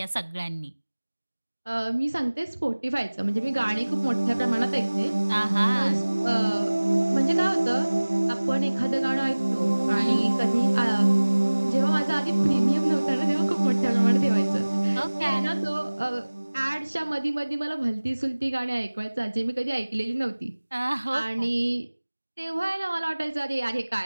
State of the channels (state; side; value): inverted; both; correlation -1.00